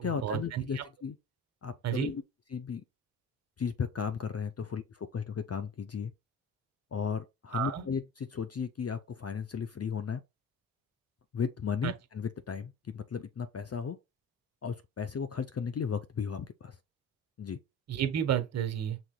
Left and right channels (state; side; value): normal; both; correlation 0.37